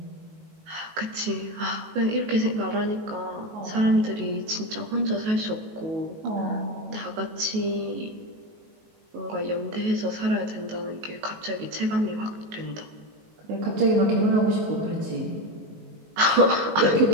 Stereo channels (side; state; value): left; late; 19 ms